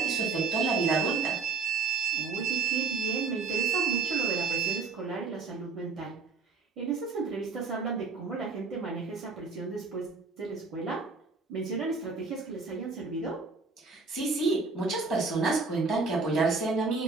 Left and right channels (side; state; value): left; quieter; 4.6 dB